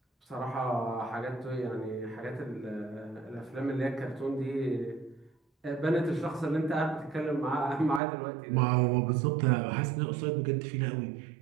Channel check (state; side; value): drops out; left; at 8.0 s